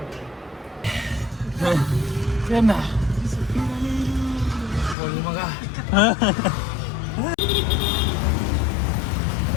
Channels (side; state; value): right; drops out; at 5.0 s